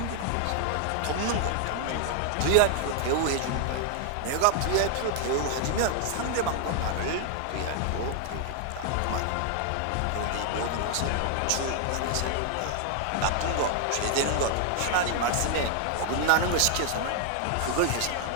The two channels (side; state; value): both; different; correlation 0.00